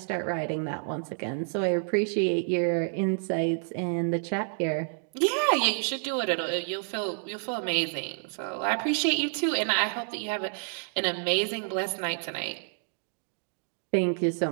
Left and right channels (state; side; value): silent; left; digital silence